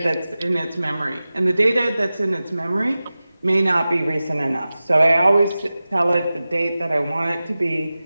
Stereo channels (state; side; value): inverted; both; correlation -0.96